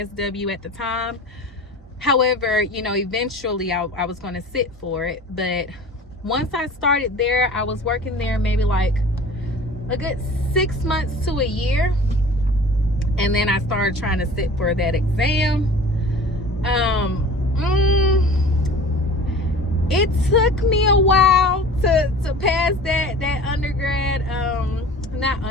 at the time. However, you know, eventually I was going to sit for it. But once I started there, I was working there maybe like a good 6 months to a year. And then I started trying to sit for that exam. It took me a while to pass that undergrad,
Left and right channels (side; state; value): both; normal; correlation 0.41